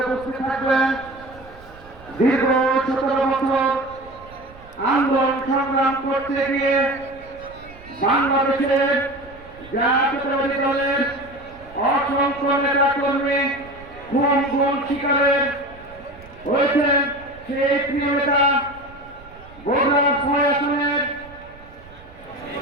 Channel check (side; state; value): right; noise; rumble, 21 dB below the sound